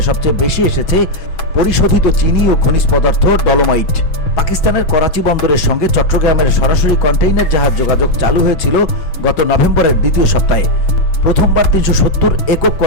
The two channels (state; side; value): late; right; 6.3 ms